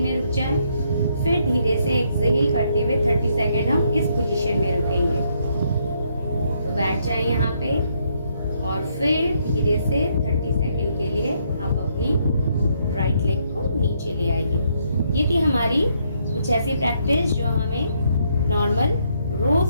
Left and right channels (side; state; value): both; inverted; correlation -0.73